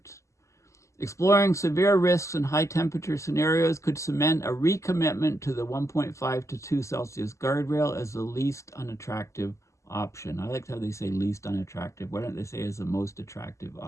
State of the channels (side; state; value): right; late; 0.14 ms